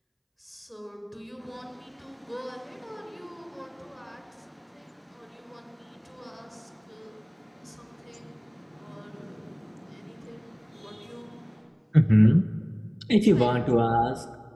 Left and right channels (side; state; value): both; identical; correlation 1.00